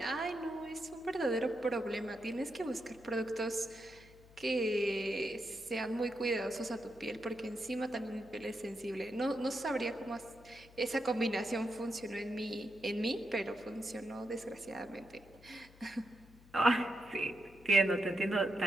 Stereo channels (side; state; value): left; noise; hum, 23 dB below the sound